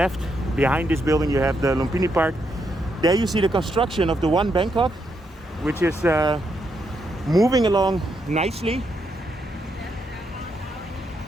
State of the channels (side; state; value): both; normal; correlation 0.79